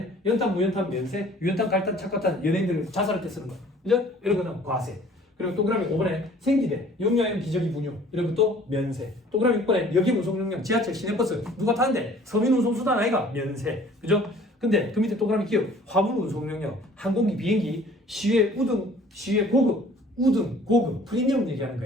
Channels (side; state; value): both; normal; correlation 0.52